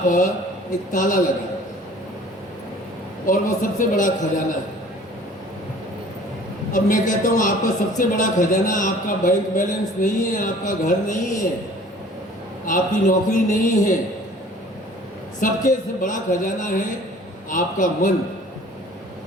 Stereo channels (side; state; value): both; normal; correlation 0.50